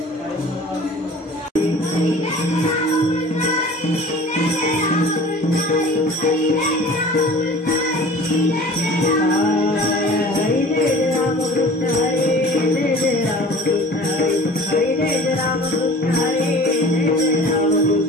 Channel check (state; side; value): normal; both; correlation 0.43